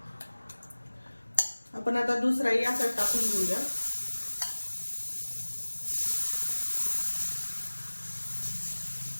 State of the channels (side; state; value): both; inverted; correlation -1.00